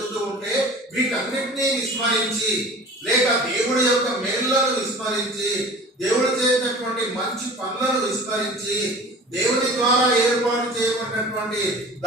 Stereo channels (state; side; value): normal; both; correlation 0.41